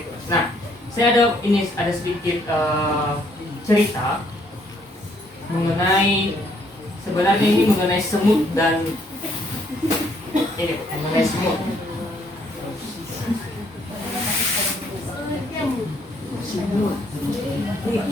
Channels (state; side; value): normal; both; correlation 0.67